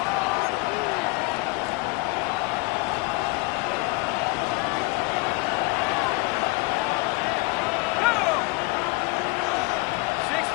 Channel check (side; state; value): right; quieter; 26.3 dB